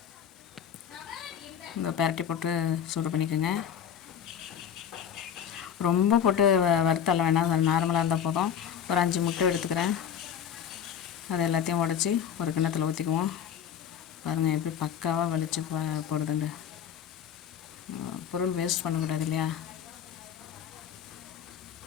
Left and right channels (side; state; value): right; quieter; 8.7 dB